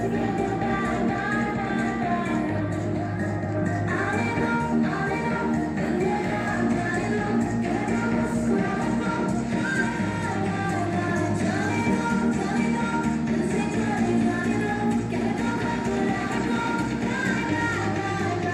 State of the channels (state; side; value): identical; both; correlation 1.00